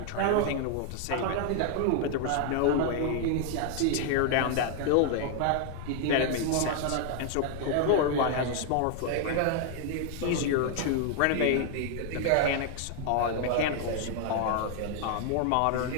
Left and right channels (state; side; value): different; both; correlation 0.00